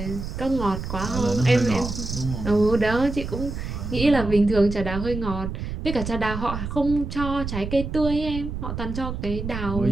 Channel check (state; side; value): noise; right; rumble, 6 dB below the sound